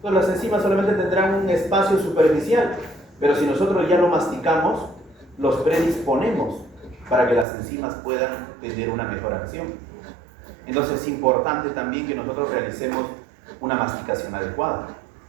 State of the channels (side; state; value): left; drops out; at 7.5 s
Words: Pues las enzimas solamente tendrán un espacio superficial, pero si nosotros ya lo masticamos, los predisponemos para que las enzimas puedan tener una mejor acción. Entonces es importante también que nosotros realicemos una masticación adecuada.